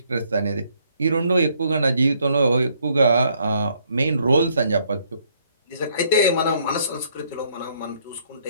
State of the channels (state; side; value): inverted; both; correlation -0.69